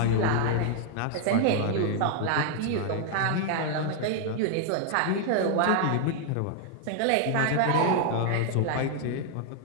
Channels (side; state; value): both; different; correlation 0.00